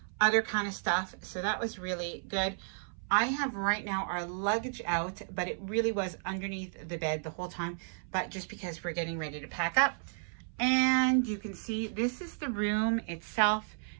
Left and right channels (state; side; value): silent; left; 56 dB below the other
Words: other kind of stuff. So that was really good. I have right now our luggage out, but it really was underneath the bed the whole time, but just because we're getting ready to pack up. And you can see this is the room itself.